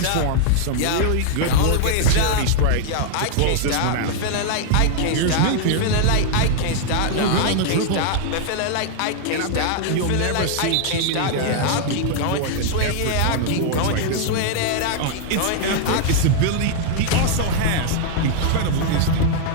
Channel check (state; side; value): different; both; correlation 0.00